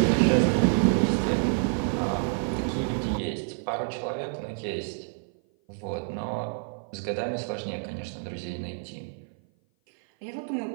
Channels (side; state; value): left; silent; 56 dB below the other